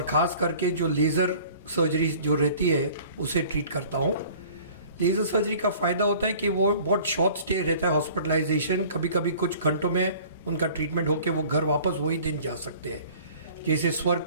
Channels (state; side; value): inverted; both; correlation -0.49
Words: ख़ास करके जो लेज़र सर्जरी जो रहती है उसे ट्रीट करता हूँ। लेज़र सर्जरी का फ़ायदा होता है कि वो बहुत शॉर्ट स्टे रहता है हॉस्पिटलाइजेशन, कभी कभी कुछ घंटों में उनका ट्रीटमेंट होकर वो घर वापस वही दिन जा सकते हैं। जैसे स्वर